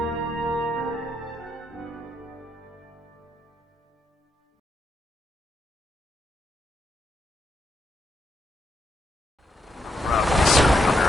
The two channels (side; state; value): both; normal; correlation 0.80